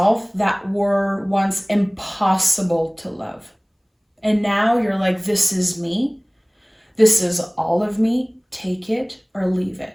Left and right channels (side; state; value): both; identical; correlation 1.00